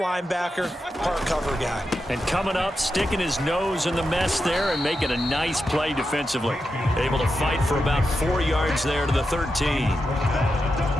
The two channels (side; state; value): both; normal; correlation 0.88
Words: part cover guy. And coming up, sticking his nose in the mess there and making a nice play defensively. Able to fight for about 4 yards there to the 13.